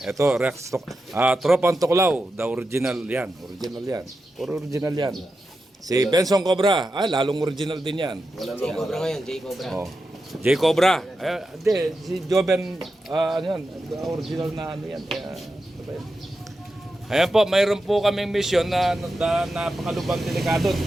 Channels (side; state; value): both; normal; correlation 0.90